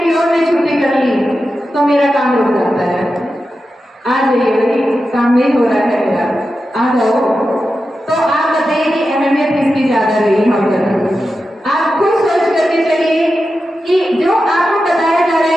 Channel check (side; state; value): both; normal; correlation 0.91